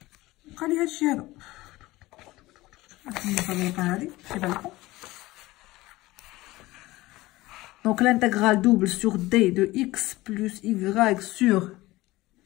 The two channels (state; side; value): quieter; right; 19.0 dB